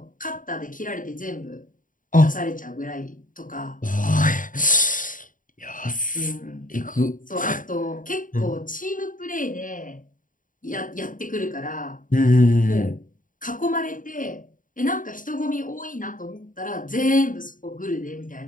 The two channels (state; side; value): late; right; 0.39 ms